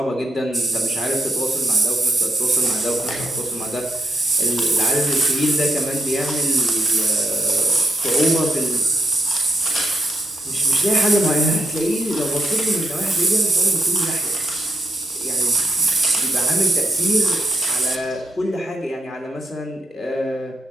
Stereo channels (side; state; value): both; normal; correlation 0.82